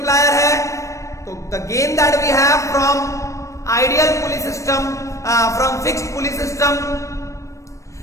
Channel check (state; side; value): late; right; 0.15 ms